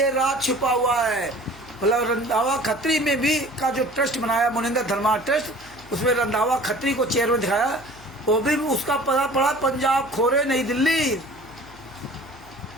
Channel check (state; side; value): noise; left; hum, 23 dB below the sound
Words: राज छुपा हुआ है। मतलब रंधावा खत्री में भी का जो ट्रस्ट बनाया मुनिंदर धर्मा ट्रस्ट, उसमें रंधावा खत्री को चेयरमैन दिखाया, वो भी उसका पता पड़ा पंजाब खोरे नई दिल्ली।